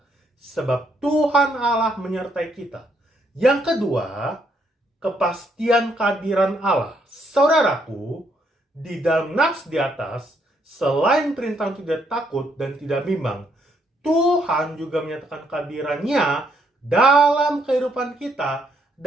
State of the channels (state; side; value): normal; both; correlation 0.73